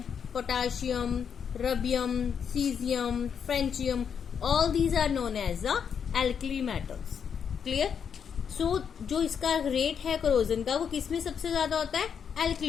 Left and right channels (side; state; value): right; quieter; 7.3 dB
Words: potassium, rubidium, caesium, francium, all these are known as the alkali metals. Clear? So जो इसका रेट है करोजन का वो किसमें सबसे ज्यादा होता है?